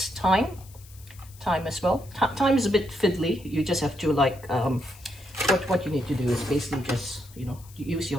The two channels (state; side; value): noise; left; hiss, 23 dB below the sound